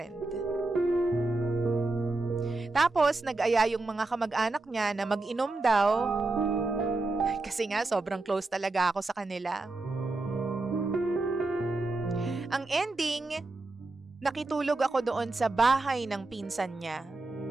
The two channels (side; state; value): left; quieter; 3.2 dB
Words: Tapos nag-aya yung mga kamag-anak niya na mag-inom daw. Kasi nga, sobrang close talaga ako sa kanila. Ang ending, nakitulog ako doon sa bahay ng pinsan niya.